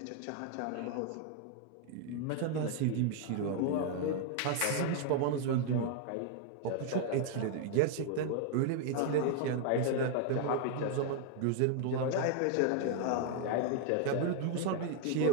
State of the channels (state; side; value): different; both; correlation 0.00